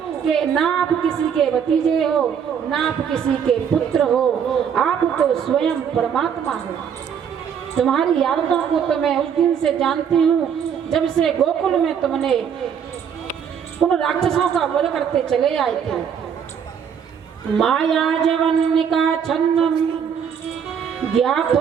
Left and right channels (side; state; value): left; quieter; 7.7 dB